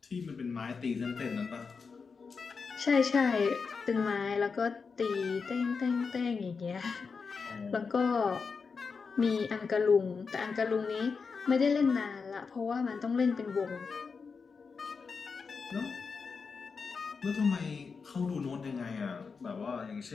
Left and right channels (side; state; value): right; quieter; 5.1 dB